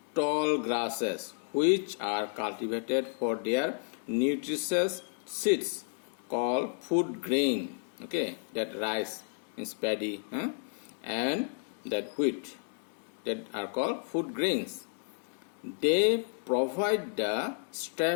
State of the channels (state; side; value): silent; right; 57 dB below the other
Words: tall grasses which are cultivated for their nutritious seeds called food grain. Okay, that rice means paddy, and that wheat that are called food grains. They provide the